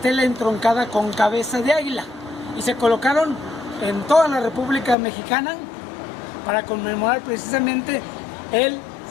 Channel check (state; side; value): drops out; right; at 5.0 s